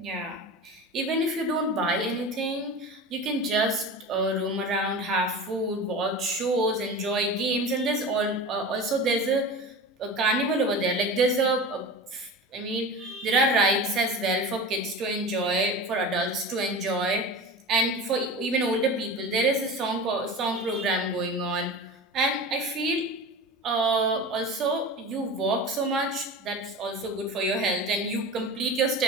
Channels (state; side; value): normal; both; correlation 0.31